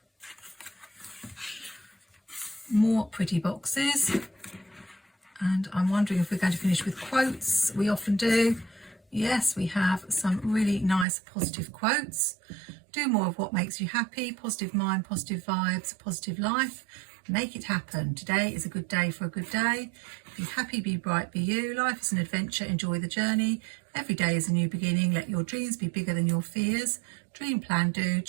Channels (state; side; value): drops out; left; at 11.1 s